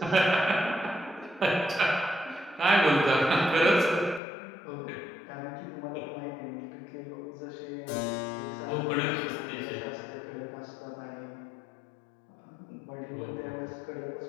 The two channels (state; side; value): drops out; right; at 4.2 s